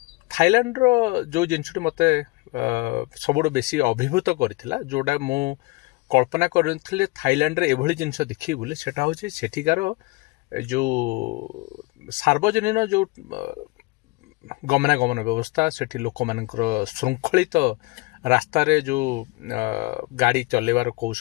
ଥାଇଲାଣ୍ଡର ଯେଉଁ ଜିନିଷଟି ମୋତେ ସବୁଠୁ ବେଶୀ ଅଭିଭୂତ କରିଥିଲା, ଯେଉଁଟା ମୁଁ କଳ୍ପନା କରିଥିଲି ଥାଇଲାଣ୍ଡରେ ଏଭଳି ଜିନିଷ ଦେଖିବି ବୋଲି, ସେଟା ହେଉଛି ସେଠିକାର ଯେଉଁ ସାର୍ବଜନୀନ ଯେଉଁ ଗମନାଗମନ ବ୍ୟବସ୍ଥା, ସେଠି ଲୋକମାନଙ୍କର ଶୃଙ୍ଖଳିତ ରାସ୍ତାରେ ଯେଉଁ ଗାଡ଼ି ଚଲେଇବାର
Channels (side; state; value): right; quieter; 24.3 dB